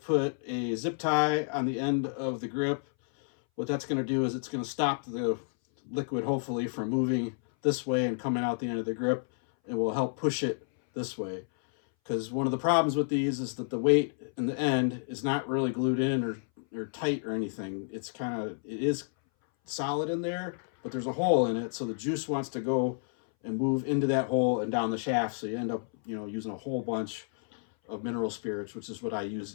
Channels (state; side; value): silent; right; 58 dB below the other